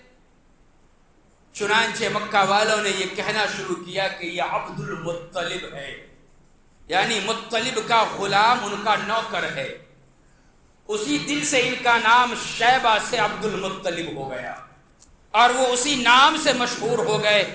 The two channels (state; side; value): identical; both; correlation 1.00